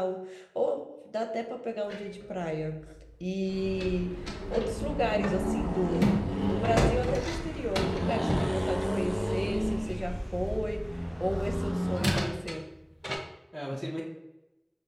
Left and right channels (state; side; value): identical; both; correlation 1.00